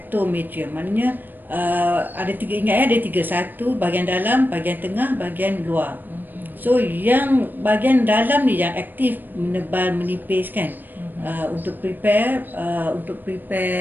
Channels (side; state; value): left; late; 0.091 ms